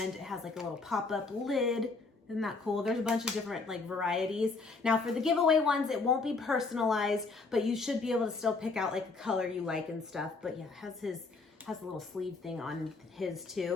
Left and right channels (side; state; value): right; quieter; 4.0 dB